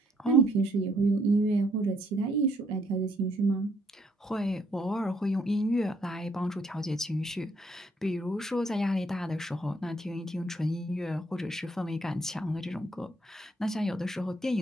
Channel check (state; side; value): normal; both; correlation 0.69